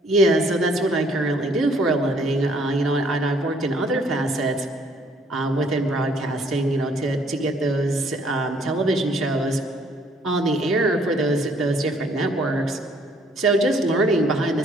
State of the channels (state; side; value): normal; both; correlation 0.63